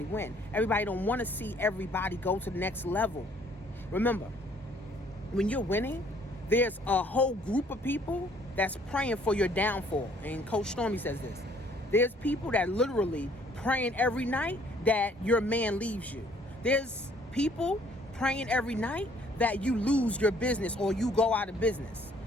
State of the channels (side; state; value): both; normal; correlation 0.61